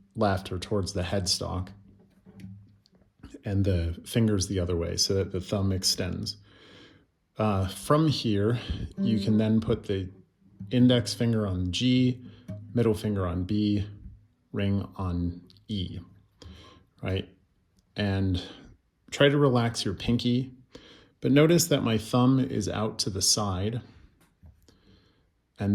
left or towards the headstock, and the fingers the other way so that the thumb extends. From here, you can then put the index finger on G, middle finger on B, ring on E, right? And try to relax your pinky, but notice that my thumb is out to the side,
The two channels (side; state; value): both; identical; correlation 1.00